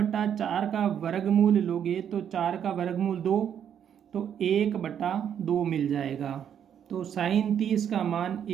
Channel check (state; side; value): quieter; left; 8.9 dB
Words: का वर्गमूल लोगे तो 4 का वर्गमूल 2, तो 1/2 मिल जाएगा। तो साइन 30 का मान